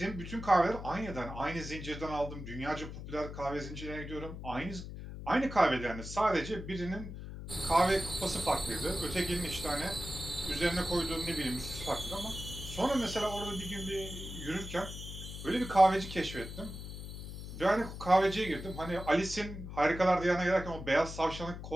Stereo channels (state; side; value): noise; left; hum, 9 dB below the sound